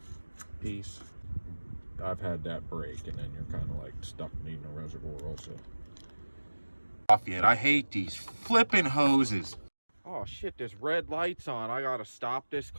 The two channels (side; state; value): both; inverted; correlation -1.00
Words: piece, I've had that break, and then you're kind of like stuck needing a reservoir also. Off yet. I hate these flipping hoses. Oh shit, this red light's on. I gotta stop this